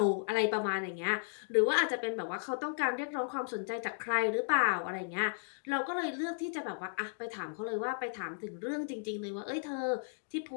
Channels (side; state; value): right; silent; digital silence